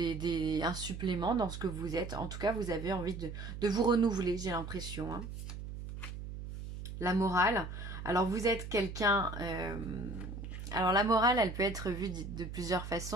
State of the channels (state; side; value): noise; right; hum, 8 dB below the sound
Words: supplément dans ce que vous êtes. En tout cas, vous avez envie de vous renouveler, j'ai l'impression. Hein. La morale. Alors, vous êtes quelqu'un... Alors la morale, elle peut être vue de plusieurs